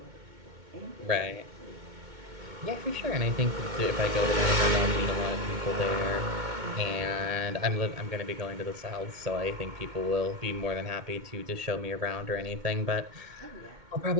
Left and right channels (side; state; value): left; late; 2.2 ms